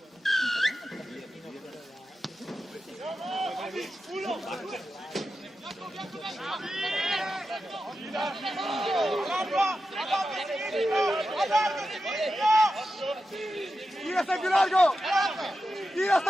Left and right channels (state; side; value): normal; both; correlation 0.91